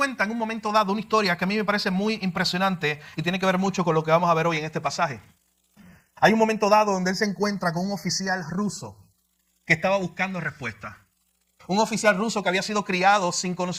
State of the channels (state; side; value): identical; both; correlation 1.00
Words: en un momento dado una historia que a mí me parece muy impresionante y tiene que ver mucho con lo que vamos a ver hoy en este pasaje. Hay un momento dado donde él se encuentra con un oficial ruso que estaba buscando respuesta. Un oficial ruso que había sido criado sin